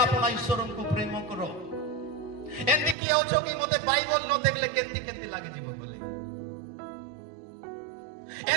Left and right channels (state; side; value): drops out; left; at 3.0 s